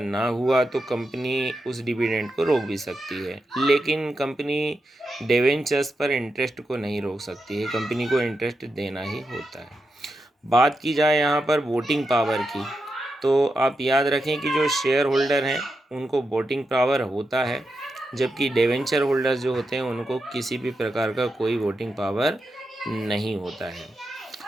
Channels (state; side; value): normal; both; correlation 0.87